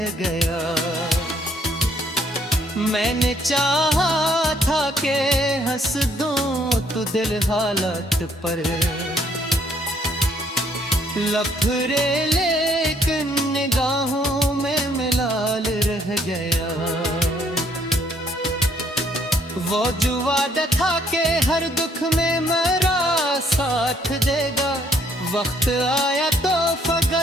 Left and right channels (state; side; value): normal; both; correlation 0.67